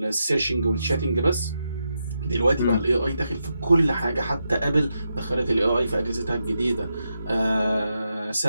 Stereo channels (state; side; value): inverted; both; correlation -0.85